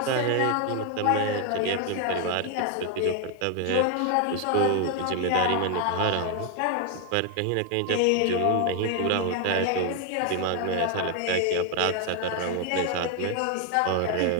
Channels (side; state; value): both; different; correlation 0.01